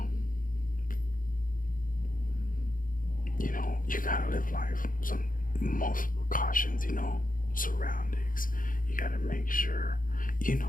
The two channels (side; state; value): right; late; 0.40 ms